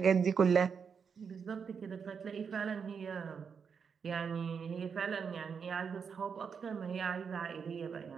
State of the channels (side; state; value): left; quieter; 6.3 dB